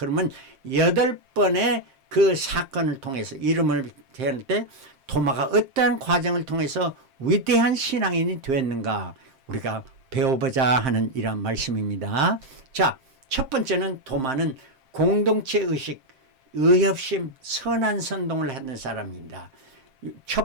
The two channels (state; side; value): late; left; 7.6 ms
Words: 8번의 그 사건을 통해서 이름을 대할 때 도마가 어떠한 과정을 통해서 위대한 신앙인이 되었는가 우리가 배워보자 하는 이런 말씀입니다. 자, 첫 번째는 도마는 공동체 의식, 의협심 선한 선동을 하는 사람입니다.